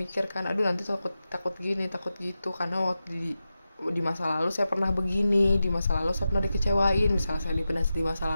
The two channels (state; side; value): inverted; both; correlation -0.92